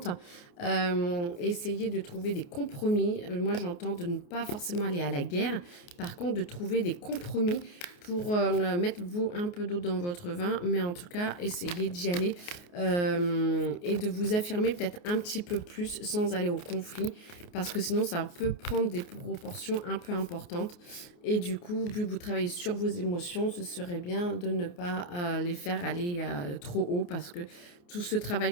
Essayez de trouver des compromis. Moi, j'entends de ne pas forcément aller à la guerre. Par contre, de trouver des compromis pour mettre vous un peu d'eau dans votre vin. Mais en tout cas, essayez d'y aller et de vous affirmer peut-être un petit peu plus sans aller au conflit. Parce que sinon, ça peut prendre des proportions un peu importantes. Et du coup, vu que vous travaillez sur vos émotions, ce serait bien de ne pas les faire aller trop haut parce que tout ce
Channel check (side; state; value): right; late; 28 ms